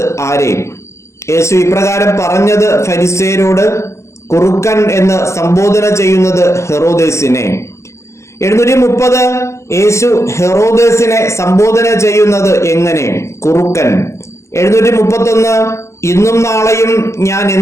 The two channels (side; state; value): right; late; 0.14 ms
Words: ആരെ? യേശു ഇപ്രകാരം പറഞ്ഞത് ഫരിസേയരോട്, കുറുക്കൻ എന്ന് സംബോധന ചെയ്യുന്നത് ഹെറോദേസിനെ. 730 യേശു ഹെറോദേസിനെ സംബോധന ചെയ്യുന്നത് എങ്ങനെ? കുറുക്കൻ. 731 ഇന്നും നാളെയും ഞാൻ